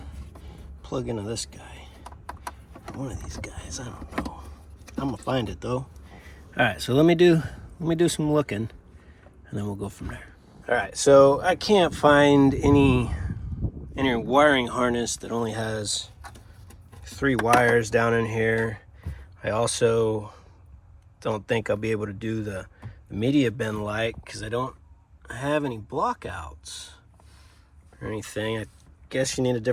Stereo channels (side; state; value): both; identical; correlation 1.00